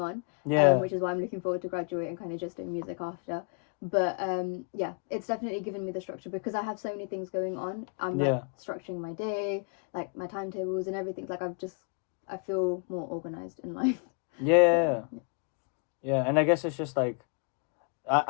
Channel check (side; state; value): right; quieter; 37.5 dB